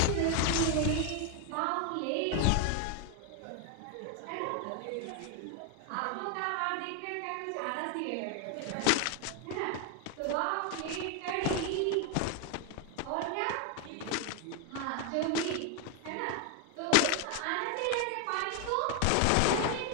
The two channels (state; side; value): different; both; correlation 0.01